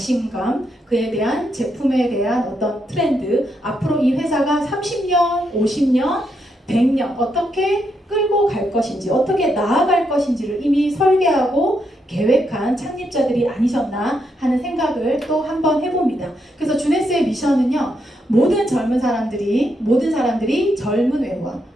그에 대한 제품에 대한 어떤 트렌드, 앞으로 이 회사가 30년, 50년, 100년 어떻게 끌고 갈 것인지, 어떻게 나아갈 것인지를 이미 설계하고 계획한 창립자들이 아니셨나 하는 생각을 또 한번 해봅니다. 그래서 주네스의 미션은요, 모든 사람들이 젊은 외모와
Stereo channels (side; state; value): both; normal; correlation 0.80